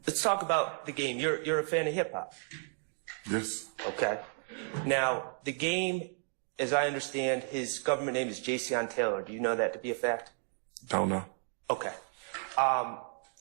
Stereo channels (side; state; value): left; silent; 56 dB below the other